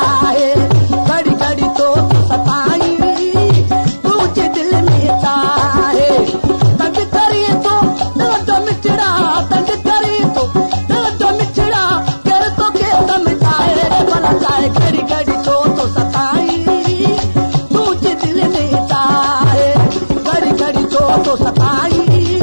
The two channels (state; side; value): inverted; both; correlation -1.00